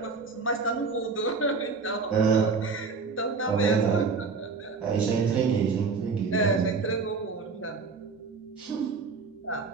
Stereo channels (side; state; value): left; quieter; 4.6 dB